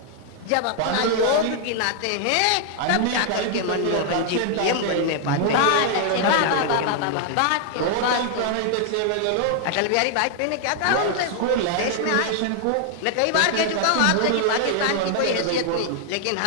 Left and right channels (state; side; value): different; both; correlation 0.00